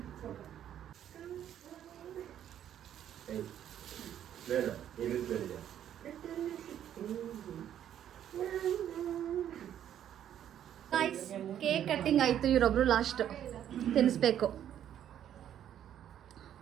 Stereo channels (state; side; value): quieter; left; 10.4 dB